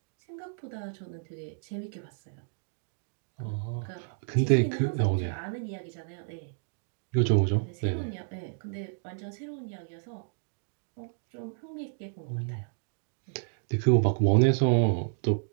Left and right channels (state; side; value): silent; left; digital silence